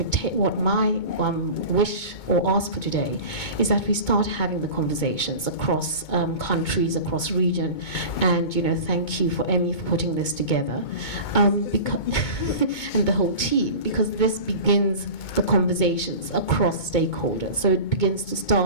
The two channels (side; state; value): right; late; 2.2 ms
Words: my wish or ask for today is that we start having the conversations across countries, across region, and thank you for Emmy for putting this together, and the whole team, because this begins the conversations across stakeholders. So it begins to